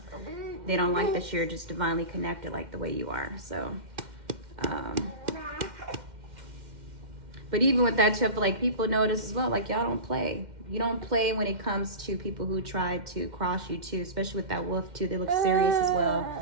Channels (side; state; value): left; late; 2.1 ms